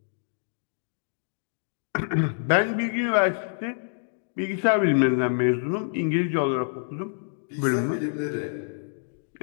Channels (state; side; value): silent; right; digital silence